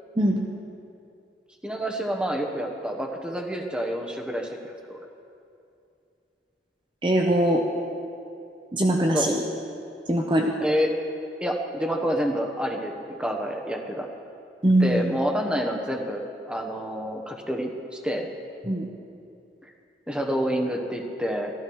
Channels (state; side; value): normal; both; correlation 0.76